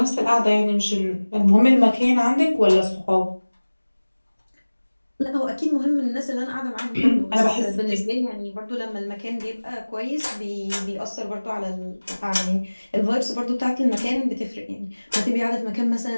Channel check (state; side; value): inverted; both; correlation -1.00